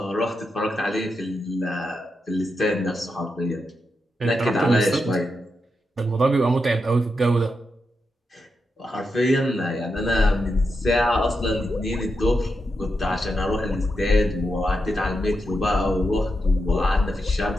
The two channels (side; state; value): both; normal; correlation 0.86